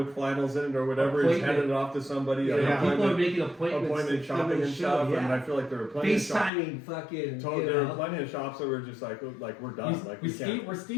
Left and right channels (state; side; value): drops out; right; at 6.5 s